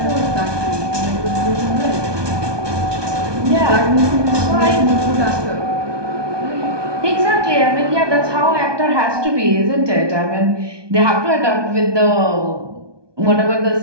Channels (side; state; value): left; late; 1.2 ms